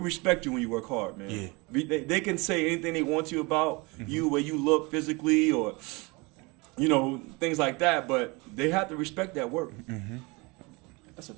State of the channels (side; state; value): left; quieter; 26.6 dB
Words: respect you when you work hard, man. Yeah. They can say anything they want to about you, where you look physically, or things like that. But they have to respect that work. Mm-hmm. That's a